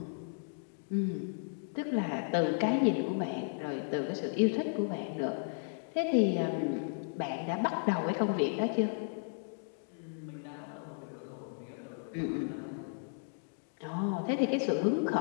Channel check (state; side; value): silent; right; digital silence